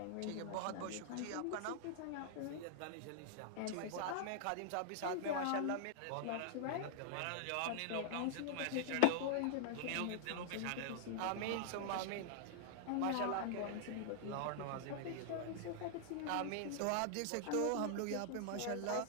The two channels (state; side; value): different; both; correlation -0.01